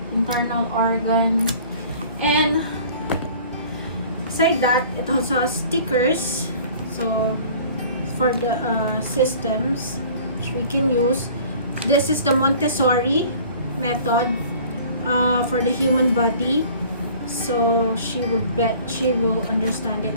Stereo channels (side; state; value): both; inverted; correlation -0.49